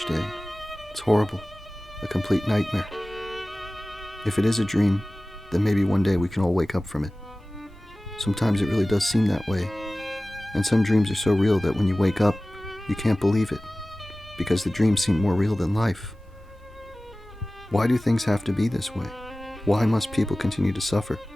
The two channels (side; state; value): both; normal; correlation 0.97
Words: day. It's horrible. A complete nightmare. If it is a dream, then maybe one day we can all wake up from it. Sometimes it really does seem that way. And some dreams are so real that when you wake up, you can't believe it, because the dreams seem more real than life. Why do things have to be this way? Why must people continue to suffer?